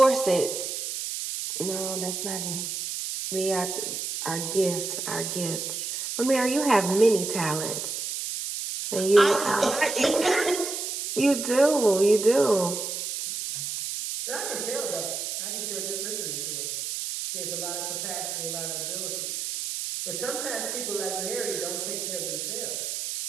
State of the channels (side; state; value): right; noise; hiss, 4 dB below the sound